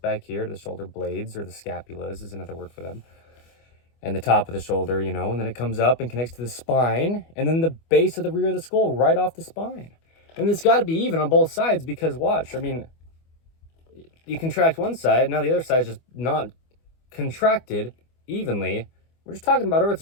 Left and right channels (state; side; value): late; right; 25 ms